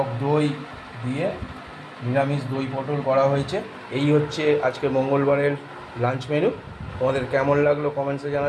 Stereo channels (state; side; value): identical; both; correlation 1.00